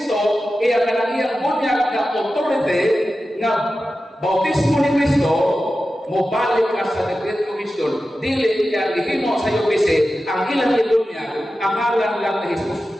iya kanang iyang bunyag na authority na bautismo ni Kristo, mobalik ka sa Great Commission, dili kaya gihimo sa UPC ang ilang ibunyag ang ngalan lang ni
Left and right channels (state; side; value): normal; both; correlation 0.93